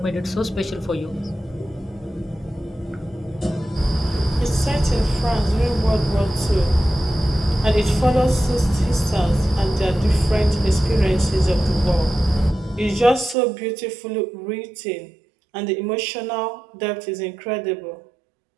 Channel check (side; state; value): left; drops out; at 13.4 s